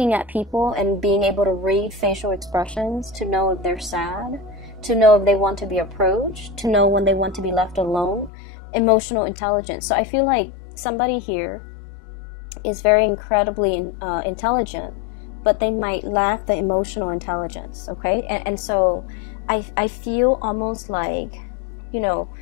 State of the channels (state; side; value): drops out; right; at 8.3 s